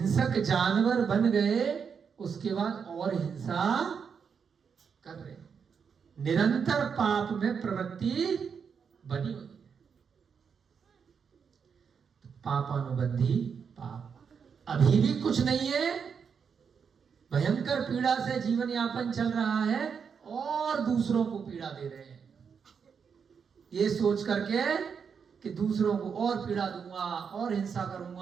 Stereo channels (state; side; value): quieter; left; 6.5 dB